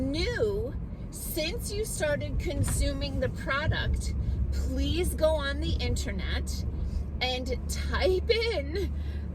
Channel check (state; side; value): identical; both; correlation 1.00